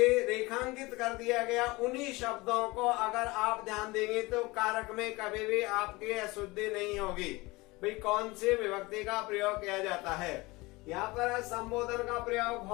रेखांकित कर दिया गया उन्हीं शब्दों को अगर आप ध्यान देंगे तो कारक में कभी भी आपकी अशुद्धि नहीं होगी। भाई कौन सी विभक्ति का प्रयोग किया जाता है। यहाँ पर संबोधन का प्रयोग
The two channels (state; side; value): quieter; right; 22.7 dB